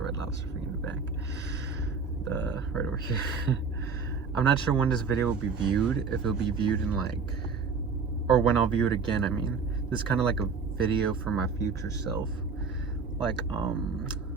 Lobster thing in the back. Right over here. I'm not sure when this video will be viewed, if it'll be viewed in or when I'll view it again, I mean. This is kind of like a video for my future self.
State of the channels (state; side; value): quieter; left; 5.1 dB